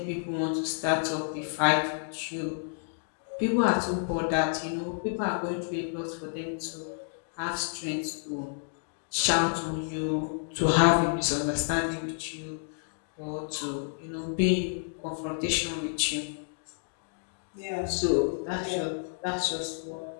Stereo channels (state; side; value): silent; right; digital silence